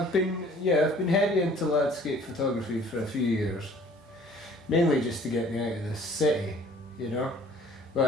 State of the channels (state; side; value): normal; both; correlation 0.53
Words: been heavy into landscape photography for a few years, mainly just to get me out of the city, you know.